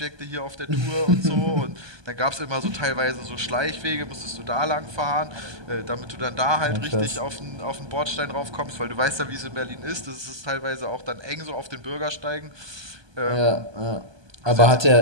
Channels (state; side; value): late; left; 1.2 ms